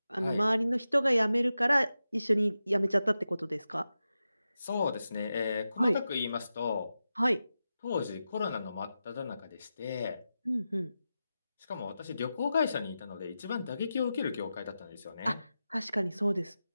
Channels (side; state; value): both; inverted; correlation -0.92